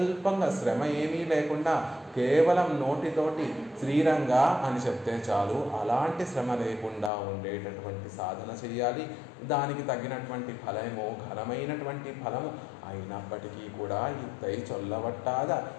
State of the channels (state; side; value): drops out; right; at 7.1 s